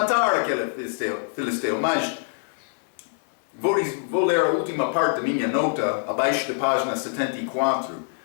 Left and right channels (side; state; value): right; silent; 62 dB below the other